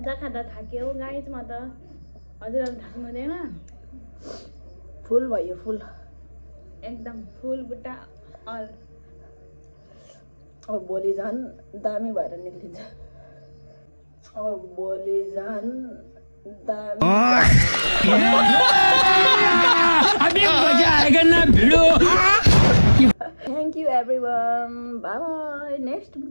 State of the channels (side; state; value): both; inverted; correlation -1.00